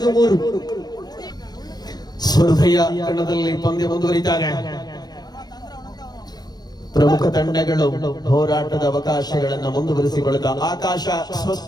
ಸ್ಪರ್ಧೆಯ ಕಣದಲ್ಲಿ ಪಂದ್ಯ ಮುಂದುವರಿತಾರೆ. ಪ್ರಮುಖ ತಂಡಗಳು ಹೋರಾಟದ ಅವಕಾಶಗಳನ್ನು ಮುಂದುವರಿಸಿಕೊಳ್ಳುತ್ತಾ ಆಕಾಶ ಸ್ವಸ್ಥ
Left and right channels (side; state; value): right; late; 0.19 ms